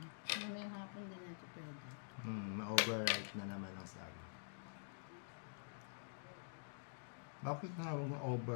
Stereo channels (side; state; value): right; silent; digital silence